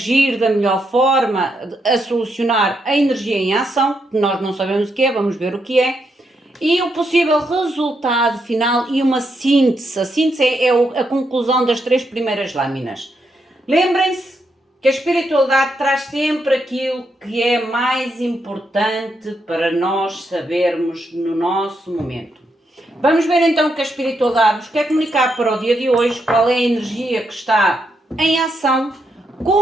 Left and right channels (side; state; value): both; normal; correlation 0.80